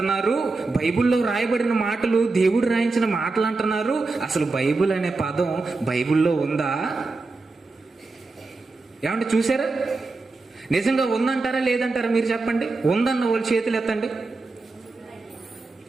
బైబిల్లో రాయబడిన మాటలు దేవుడు రాయించిన మాటలు అంటున్నారు. అసలు బైబిల్ అనే పదం బైబిల్లో ఉందా? ఏమంటే చూసారా? నిజంగా ఉందంటారా లేదంటారా మీరు చెప్పండి. ఉందన్న వాళ్ళు చేతులు ఎత్తండి.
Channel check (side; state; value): left; quieter; 3.6 dB